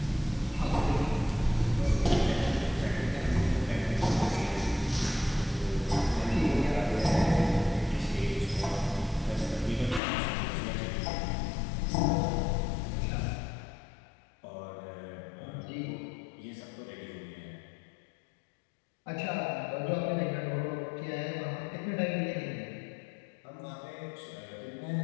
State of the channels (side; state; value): right; drops out; at 10.0 s